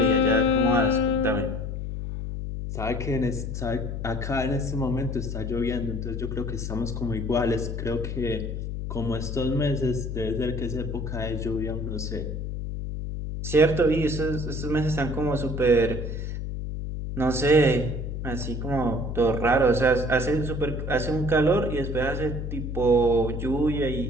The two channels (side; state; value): left; noise; hum, 4 dB below the sound